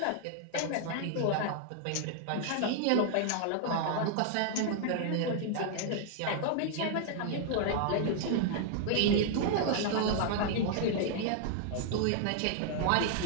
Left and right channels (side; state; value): both; different; correlation 0.00